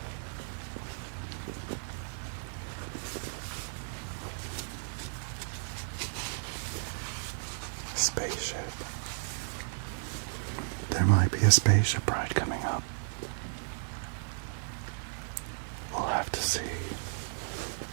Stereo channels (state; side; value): silent; left; digital silence